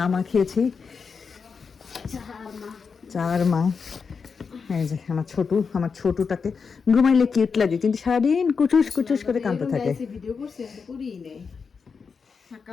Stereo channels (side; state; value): right; quieter; 5.5 dB